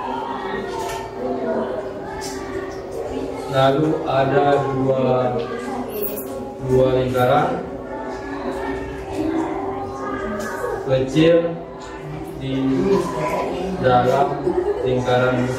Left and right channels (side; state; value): both; identical; correlation 1.00